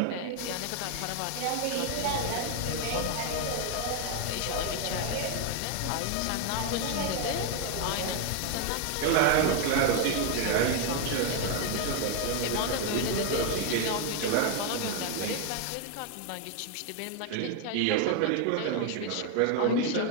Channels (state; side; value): different; both; correlation 0.01